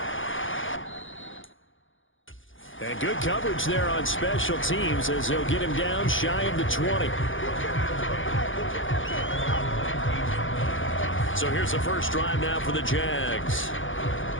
And good coverage there on special teams as they'll get him down shy of the 20. So here's the first drive now for the Jags.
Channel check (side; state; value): right; late; 0.57 ms